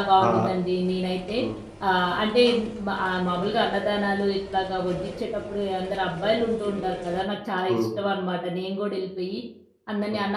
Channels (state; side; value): identical; both; correlation 1.00